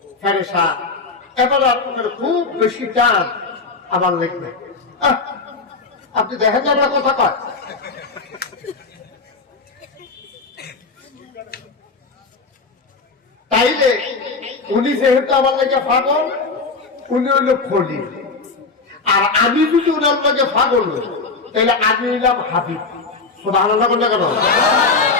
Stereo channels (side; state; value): right; quieter; 4.1 dB